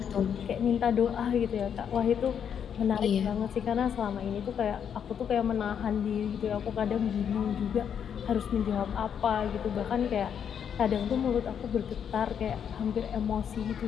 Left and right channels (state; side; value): quieter; right; 8.1 dB